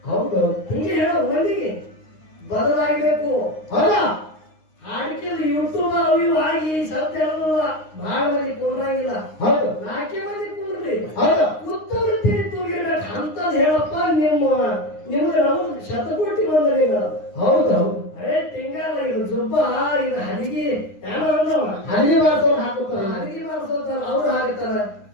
ಹೌದು ಹಿಂಗೆ ಹೇಳೋ ಮಂದಿಗೆ ಬದಲಾಗಬೇಕು. ಹೌದಾ ಹಾಡಿಕೆದು ಯೂಟ್ಯೂಬ್ ಅವು ಇವು ಆಗಿ ಸತ್ಯ ಹೇಳೋದಿಲ್ಲ. ಬಹಳ ಮಂದಿ ಕುಂದ್ರಾಗಿಲ್ಲ. ಹೌದು 4 ಮಂದಿ ಕುಂದ್ರಿ ಹೌದು ಉತ್ತಮ ತೂಗಿರ್ಬೇಕು ಅಂತದ್ ಹೇಳಪ್ಪ. ನಿಮ್ಗೆ ನಾವು ಶತಕೋಟಿ ಬಂದಲಿಲ್ಲ. ಹೌದು ಹೌದು ಅರೇ ತಿಂಗಳ ಇದು ಜುಬ್ಬ ಇದು ಹದಿಗೆ ಏನೋ ಅಂದವ ಹಳ್ಳಿ ಮಾಡ್ಸೋರು ಹಾಕುತ್ತಾರೆ ಹದಿಗೆ ಮಾಡಿಸೋತಾರ ಅವ್ರು ಹಾಕ್ತಾರ.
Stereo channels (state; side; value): late; right; 9.7 ms